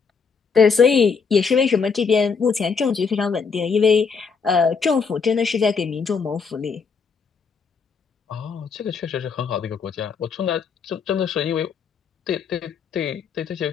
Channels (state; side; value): quieter; right; 5.5 dB